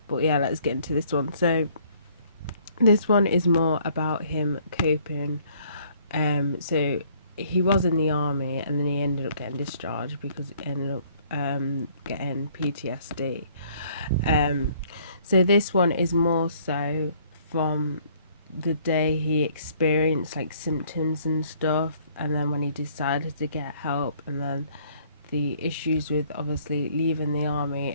But yeah, let's get into this one. So this one is more about him coping. So he was in the army and then he ended up getting discharged because he ended up getting PTSD. So this one is more so from the day he experienced like symptoms and stuff, and then when he decided to get help, and then the issues with obviously leaving the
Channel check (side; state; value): both; inverted; correlation -0.61